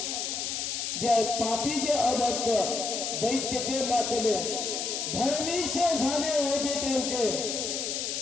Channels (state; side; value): noise; left; hiss, 2 dB below the sound